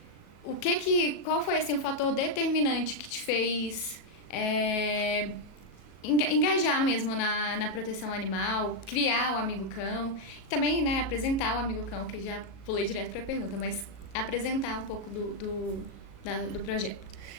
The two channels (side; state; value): right; late; 37 ms